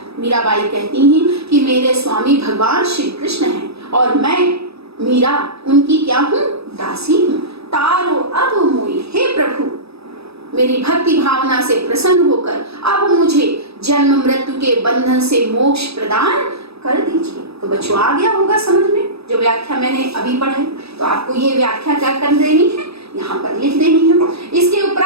मीराबाई कहती हैं कि मेरे स्वामी भगवान श्री कृष्ण हैं और मैं मीरा उनकी क्या हूँ, दासी हूँ। तारो अब मोई, हे प्रभु मेरी भक्ति भावना से प्रसन्न होकर अब मुझे जन्म मृत्यु के बंधन से मोक्ष प्रदान कर दीजिए। तो बच्चों आ गया होगा समझ में जो व्याख्या मैंने अभी पढ़ी, तो आपको ये व्याख्या क्या कर देनी है, यहाँ पर लिख देनी है। इसके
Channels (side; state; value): left; late; 0.78 ms